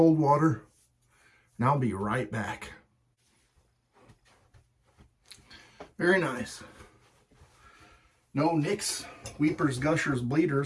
water, and I'll be right back. Very nice. No nicks, weepers, gushers,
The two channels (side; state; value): both; identical; correlation 1.00